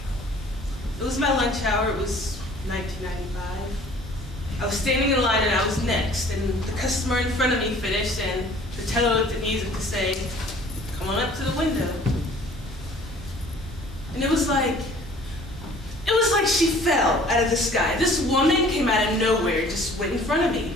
It was my lunch hour. It was 1995. I was standing in line and I was next, and the customer in front of me finished, and the teller looked at me as if to say, "Come on up to the window." And it was like she fell out of the sky. This woman came out of nowhere, just went in front of me.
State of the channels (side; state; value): both; normal; correlation 0.52